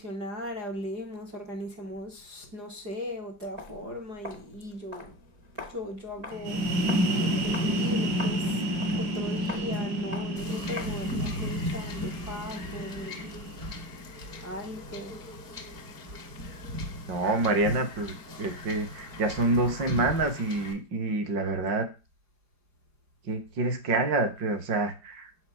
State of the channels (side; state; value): left; late; 4.9 ms